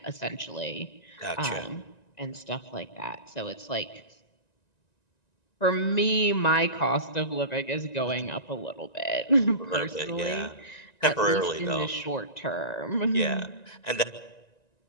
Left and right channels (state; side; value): late; right; 1.9 ms